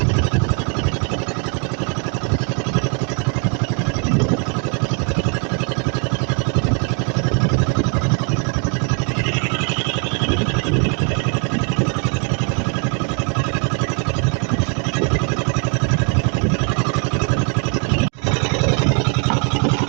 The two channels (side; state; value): left; quieter; 38.5 dB